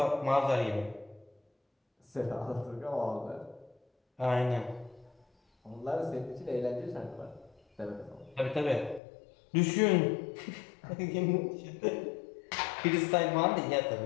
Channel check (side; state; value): right; drops out; at 9.0 s